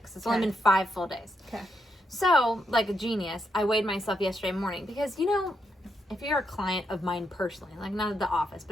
It's only Okay. been 5 full days. Okay. So, like a genius, I weighed myself yesterday morning because, if you're a client of mine personally, like not at the office,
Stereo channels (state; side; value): normal; both; correlation 0.80